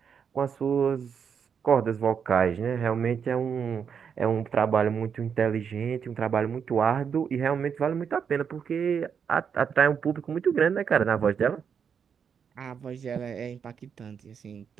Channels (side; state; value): left; quieter; 7.1 dB